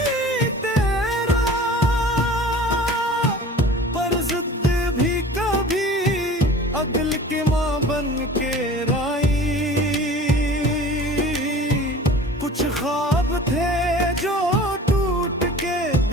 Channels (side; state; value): both; normal; correlation 0.42